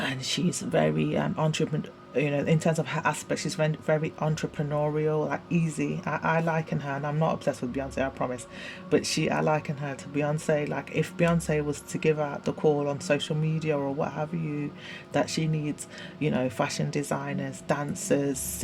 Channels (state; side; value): identical; both; correlation 1.00